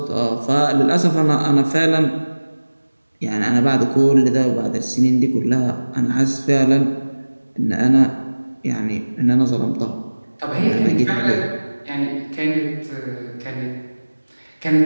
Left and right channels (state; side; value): inverted; both; correlation -1.00